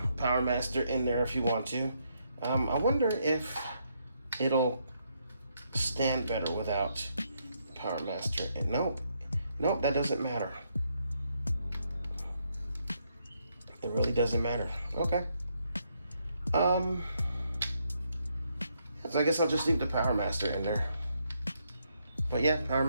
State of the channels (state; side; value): inverted; both; correlation -0.76